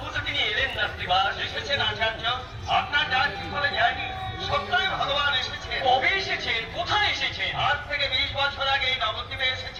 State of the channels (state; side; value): identical; both; correlation 1.00